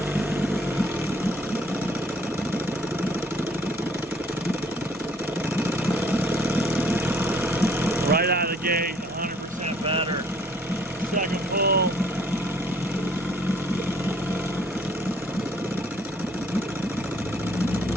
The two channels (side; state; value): both; normal; correlation 0.60